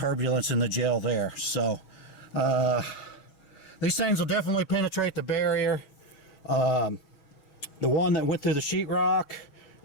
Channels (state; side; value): late; right; 6.2 ms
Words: in the gel there. So these things will definitely penetrate the barrier. The one that went through the sheetrock